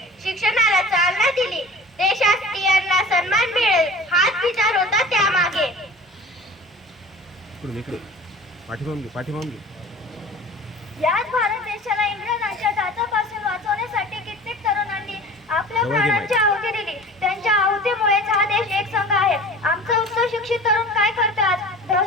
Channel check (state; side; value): normal; both; correlation 0.41